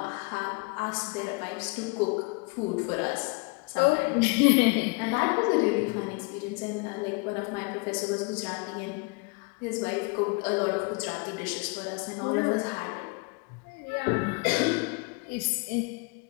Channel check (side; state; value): right; quieter; 29.7 dB